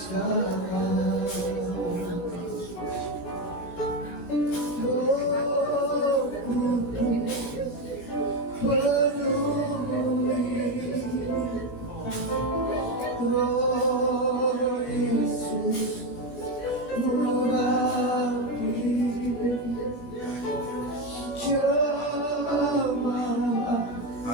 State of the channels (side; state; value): right; late; 16 ms